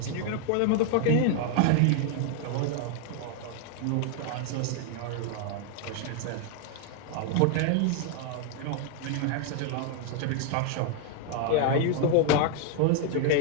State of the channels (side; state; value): both; different; correlation 0.00